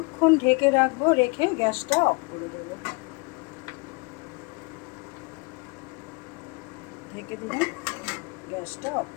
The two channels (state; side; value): quieter; right; 30.2 dB